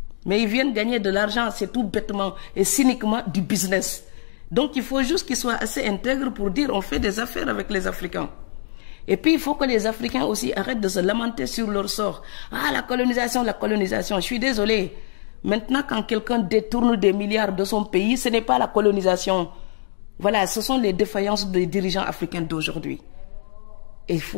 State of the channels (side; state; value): right; silent; digital silence